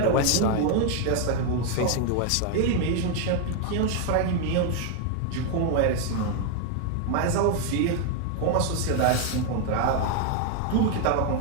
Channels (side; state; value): both; different; correlation 0.00